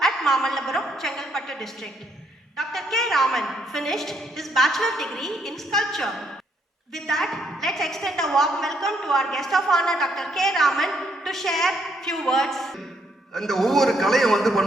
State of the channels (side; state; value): both; normal; correlation 0.72